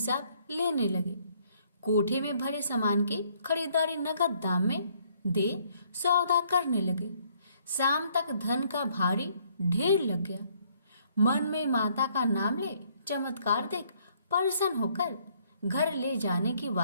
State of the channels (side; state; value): both; inverted; correlation -0.66